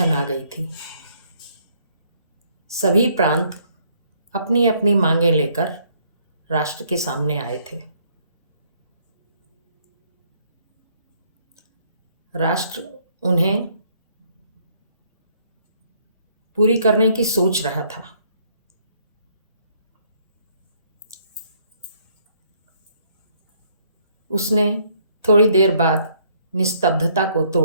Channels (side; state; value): both; inverted; correlation -0.66